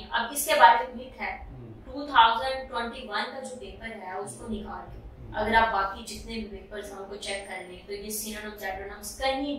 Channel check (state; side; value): identical; both; correlation 1.00